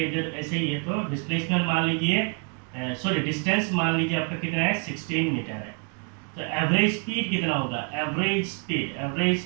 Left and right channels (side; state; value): left; quieter; 39.5 dB